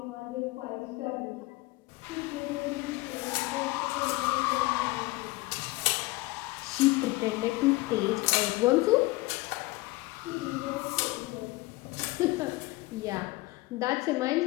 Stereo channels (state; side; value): quieter; right; 21.3 dB